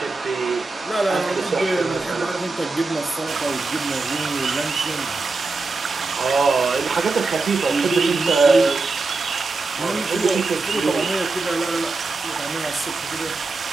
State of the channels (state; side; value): quieter; left; 3.7 dB